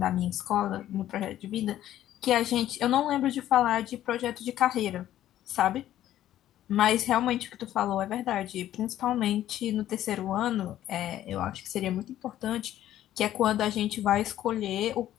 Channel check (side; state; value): right; quieter; 12.6 dB